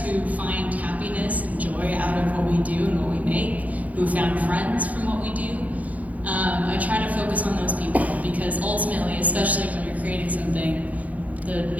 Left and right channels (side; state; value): left; late; 0.074 ms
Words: who find happiness and joy out of what we do and what we make, who found friends from what we do. I try to focus on those people, because ultimately, especially when you're creating something, the